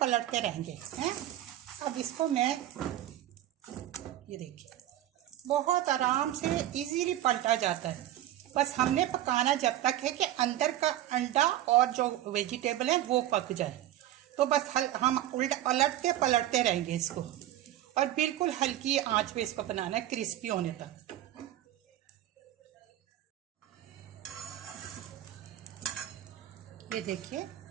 रहेंगे हैं। अब इसको मैं, ये देखिए, बहुत आराम से इजीली पलटा जाता है। बस हमने पकाना जब तक है कि अंदर का अंडा और जो वेजिटेबल है वो पक जाए। तो बस हम पलटते पलटते रहेंगे इसको और बिल्कुल हल्की आंच पे इसको बनाना है, क्रिस्पी होने तक। ये देखिए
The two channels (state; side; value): quieter; left; 13.2 dB